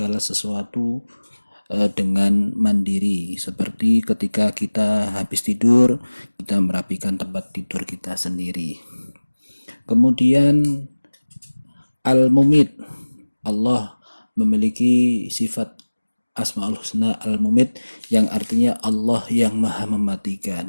sesuatu dengan mandiri, seperti ketika kita habis tidur, kita merapikan tempat tidur kita sendiri. Kemudian Al-Mumit, Allah memiliki sifat Asmaul Husna Al-Mumit yang artinya Allah yang maha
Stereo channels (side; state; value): both; inverted; correlation -1.00